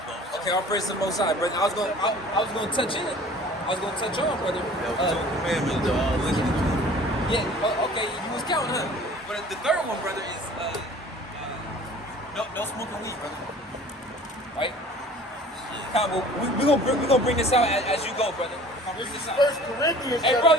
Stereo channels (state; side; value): normal; both; correlation 0.47